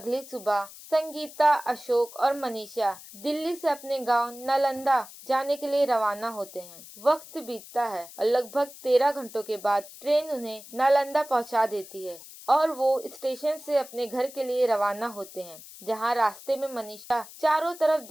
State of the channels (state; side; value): noise; left; hiss, 17 dB below the sound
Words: सुबह संगीता, अशोक और मनीषा दिल्ली से अपने गांव नालंदा जाने के लिए रवाना होते हैं। वक्त बीतता है और लगभग 13 घंटों के बाद ट्रेन उन्हें नालंदा पहुंचा देती है और वो स्टेशन से अपने घर के लिए रवाना होते हैं, जहाँ रास्ते में मनीषा चारों तरफ